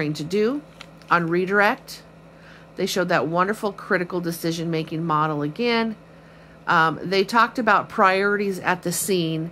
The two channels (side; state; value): both; identical; correlation 1.00